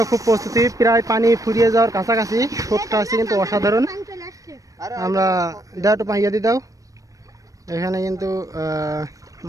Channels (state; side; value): late; left; 0.16 ms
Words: খুব প্রস্তুতি, প্রায় পানি ফুরিয়ে যাওয়ার কাছাকাছি। শোটটা আছে কিন্তু অসাধারণ। আমরা দাও একটু পাইয়া দিয়ে দাও। এখানে কিন্তু